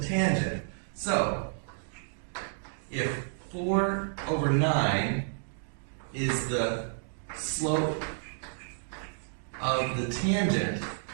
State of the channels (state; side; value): silent; left; digital silence